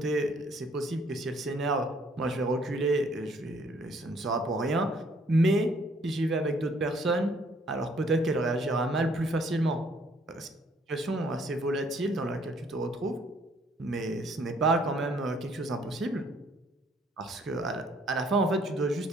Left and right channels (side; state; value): both; normal; correlation 0.63